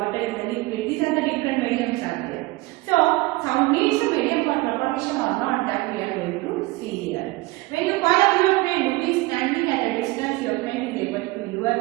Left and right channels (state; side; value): quieter; left; 21.4 dB